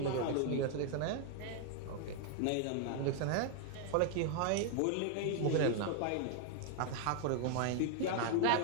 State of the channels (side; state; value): both; different; correlation 0.00